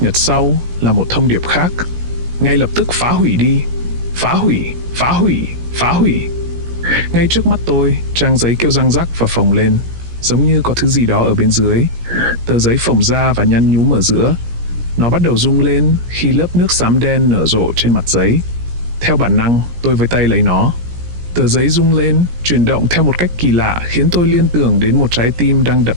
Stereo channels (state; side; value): late; left; 17 ms